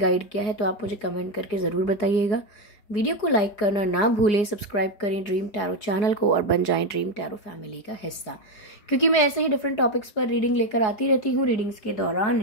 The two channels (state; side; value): late; right; 5.2 ms